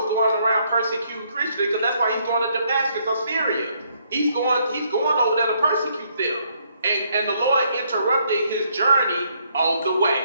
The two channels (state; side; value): inverted; both; correlation -0.71